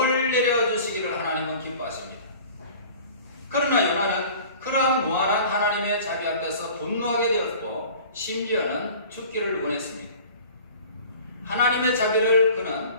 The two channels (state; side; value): inverted; both; correlation -0.45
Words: 내려주시기를 하나님은 기뻐하십니다. 그러나 요나는 그러한 무한한 하나님의 자비 앞에서 분노하게 되었고 심지어는 죽기를 원했습니다. 하나님의 자비를